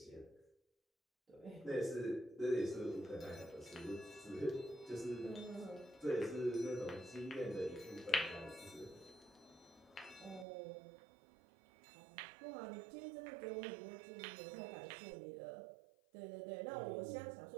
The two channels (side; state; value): left; drops out; at 10.5 s